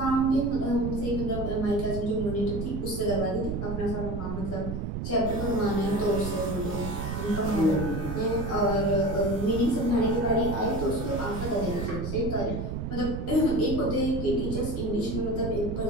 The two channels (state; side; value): noise; right; rumble, 4 dB below the sound